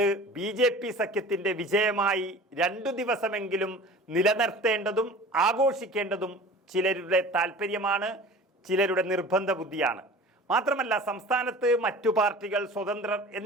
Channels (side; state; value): both; normal; correlation 0.41